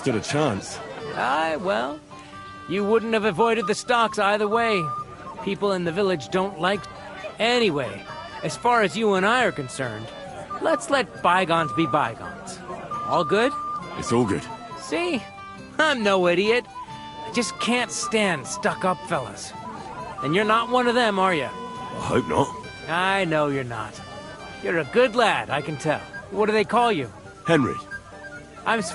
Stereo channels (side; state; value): both; identical; correlation 1.00